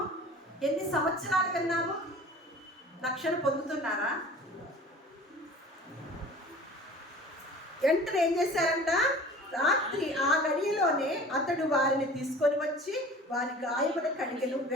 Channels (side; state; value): both; normal; correlation 0.43